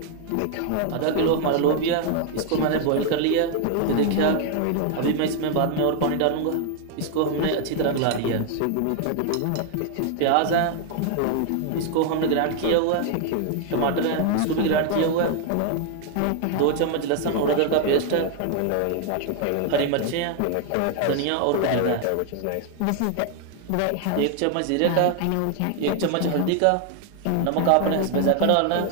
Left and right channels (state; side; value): different; both; correlation 0.00